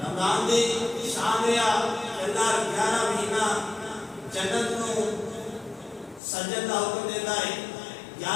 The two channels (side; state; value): right; drops out; at 6.2 s